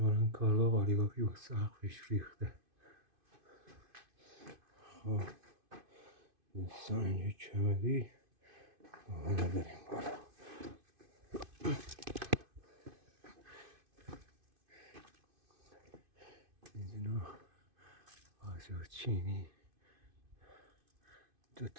کارگاه قالیبافی با سقفش ریخته. خب این سنگ کمری. حالا بریم بالا. اینجا آجر چینی 2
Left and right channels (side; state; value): left; late; 2.5 ms